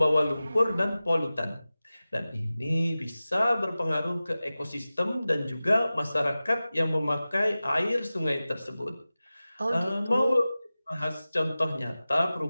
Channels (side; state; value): both; inverted; correlation -0.96